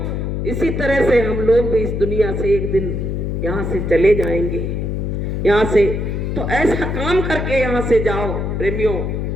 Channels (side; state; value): left; noise; hum, 2 dB below the sound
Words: इसी तरह से हम लोग भी इस दुनिया से एक दिन यहाँ से चले जाएंगे, यहाँ से तो ऐसा काम करके यहाँ से जाओ प्रेमियों